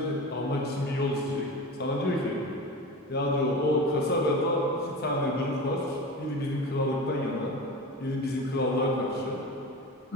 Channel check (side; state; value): both; normal; correlation 0.30